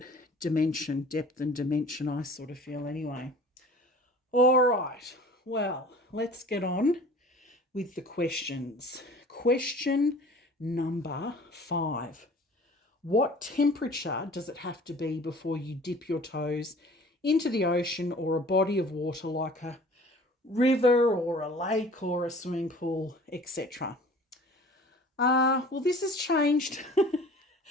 dimension, depth and dimension, I sort of feel anyway. All right, well, let's get on with the questions. Question number 5. What temperature does it have to be before you dip your toes into the ocean or a body of water like a river or a lake or a swimming pool, etc.? Well, this has changed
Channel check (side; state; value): both; normal; correlation 0.46